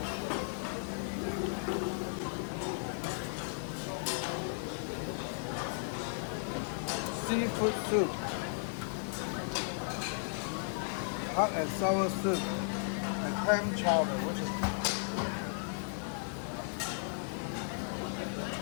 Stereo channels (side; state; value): right; silent; digital silence